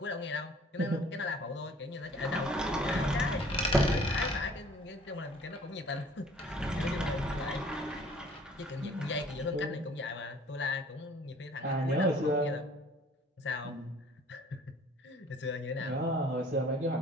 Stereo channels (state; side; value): normal; both; correlation 0.54